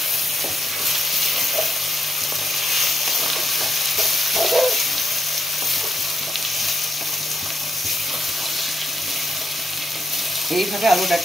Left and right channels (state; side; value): normal; both; correlation 0.82